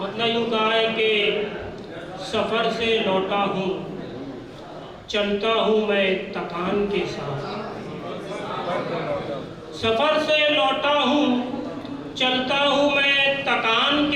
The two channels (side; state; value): both; identical; correlation 1.00